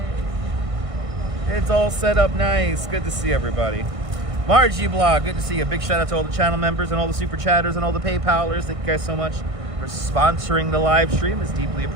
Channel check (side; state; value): left; late; 1.6 ms